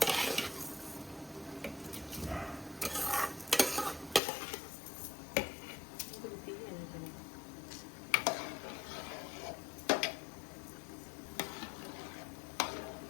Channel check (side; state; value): right; drops out; at 4.2 s